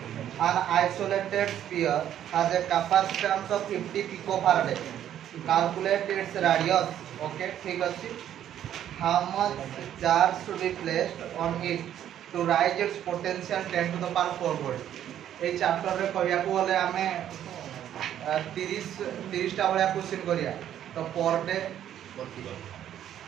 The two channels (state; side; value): quieter; left; 10.8 dB